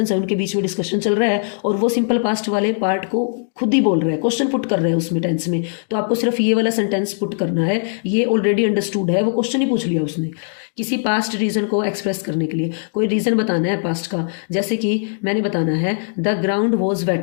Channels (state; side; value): silent; right; digital silence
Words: है उनके बीच में डिस्कशन चल रहा है और वो सिंपल पास्ट वाले पार्ट को खुद ही बोल रहे हैं, क्वेश्चन पुट कर रहे हैं उसमें टेंस में, तो आपको सिर्फ ये वाला सेंटेंस पुट करना है, ये ऑलरेडी अंडरस्टूड है, वो क्वेश्चन ही पूछ लिया उसने। किसी पास्ट रीजन को एक्सप्रेस करने के लिए कोई रीजन बताना है पास्ट का, जैसे कि मैंने बताना है द ग्राउंड वॉज